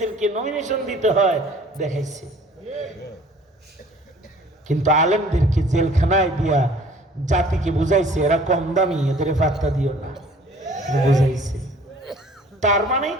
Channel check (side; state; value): both; normal; correlation 0.52